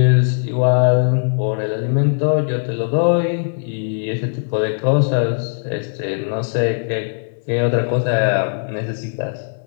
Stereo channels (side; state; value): right; silent; digital silence